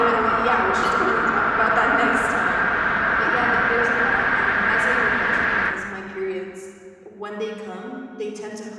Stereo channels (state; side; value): identical; both; correlation 1.00